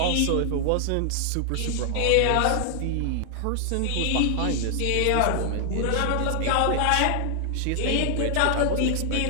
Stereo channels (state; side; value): different; both; correlation 0.00